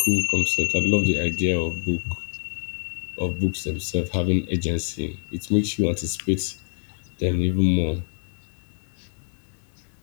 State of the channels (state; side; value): silent; right; 61 dB below the other